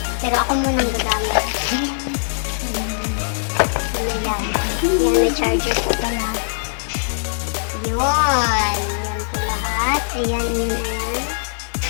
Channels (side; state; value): right; silent; digital silence